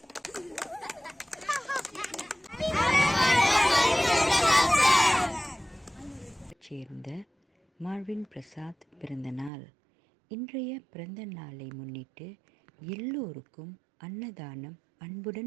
சேர்ந்த மார்வின் பிரசாத் பிறந்த நாள். இன்றைய பிறந்த நாளை முன்னிட்டு எல்லோருக்கும் அன்னதானம்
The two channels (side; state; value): left; drops out; at 9.5 s